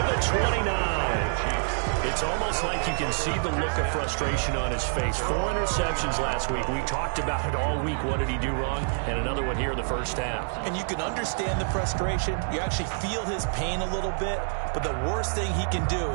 the 29. It's almost like you can see the look of frustration on his face. 4 interceptions last week. We talked about it all week. What did he do wrong? And another one here in the first half. And you can understand the frustration. You actually feel his pain a little bit. But the worst thing he can do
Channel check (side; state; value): left; silent; digital silence